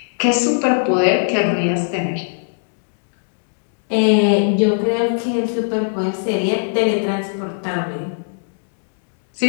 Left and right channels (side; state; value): right; silent; 67 dB below the other